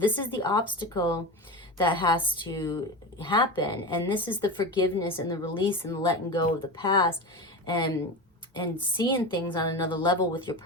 is the obstacle that has to happen, and this is the forgiveness and the release and the letting go of the past, and seeing things on another level with your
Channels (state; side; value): normal; both; correlation 0.24